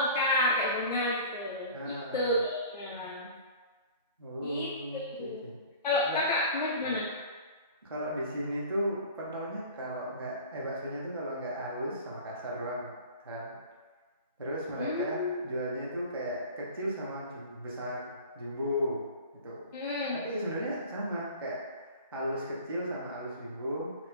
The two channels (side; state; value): both; inverted; correlation -0.41